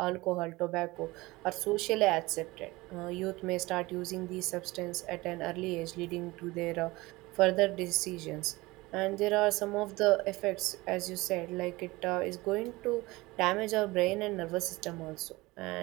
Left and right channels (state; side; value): quieter; left; 21.2 dB